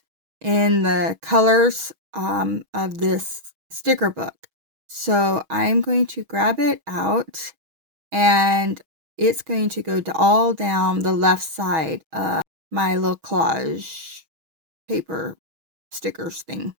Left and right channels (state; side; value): late; left; 6.2 ms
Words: in the colors of this sticker book. So I'm going to grab it out, and it's going to go all down the left side of my little collage paper stickers thing